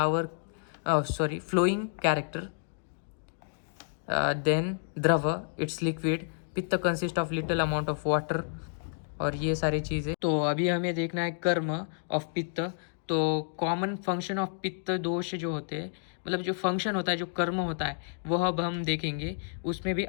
फ्लोइंग कैरेक्टर, देन द्रव इट्स लिक्विड, पित्त consist of little amount of water और ये सारी चीज़ें। तो अभी हमें देखना है कर्म ऑफ पित्त। तो कॉमन फंक्शन ऑफ पित्त दोष जो होते हैं, मतलब जो फंक्शन होता है, जो कर्म होता है, वह अब हम देखेंगे। उसमें भी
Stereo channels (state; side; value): silent; right; digital silence